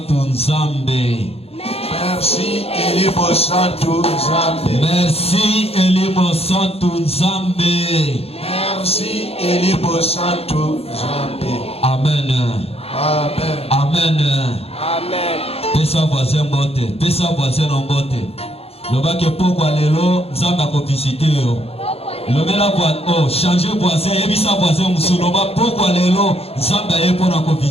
Nzambe. Merci Elimo Santu Nzambe. Merci Elimo Santu Nzambe. Merci Elimo Santu Nzambe. Amen. Amen. Amen. Amen. Pesa voisin bote, pesa voisin en bote. Loba ke pokwa lelo Nzambe akovisite yo. Lobela oh, changer voisin, ebisa voisin musuloba pokwa lelo Nzambe aye pona ko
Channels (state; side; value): late; right; 0.29 ms